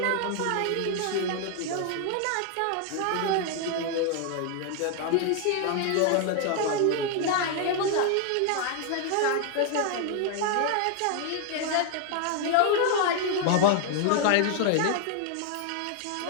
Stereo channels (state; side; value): different; both; correlation 0.00